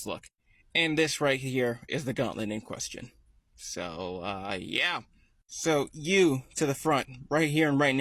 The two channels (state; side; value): identical; both; correlation 1.00